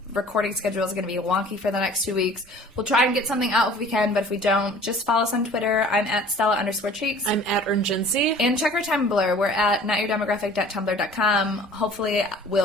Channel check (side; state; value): both; normal; correlation 0.48